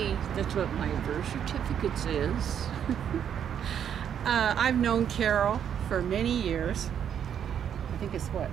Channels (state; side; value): quieter; left; 8.8 dB